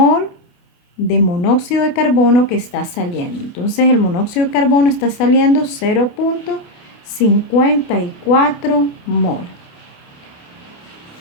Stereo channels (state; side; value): late; right; 28 ms